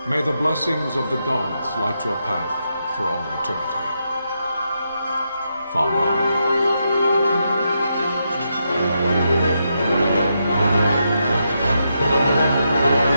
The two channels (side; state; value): both; inverted; correlation -0.83